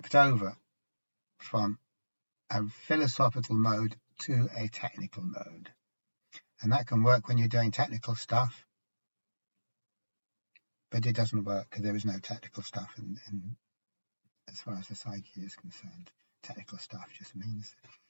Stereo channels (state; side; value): inverted; both; correlation -1.00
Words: over from a philosophical mode to a technical mode. And that can work when you're doing technical stuff, but it doesn't work because there is no technical stuff in as far as the psyche is concerned. Technical stuff just means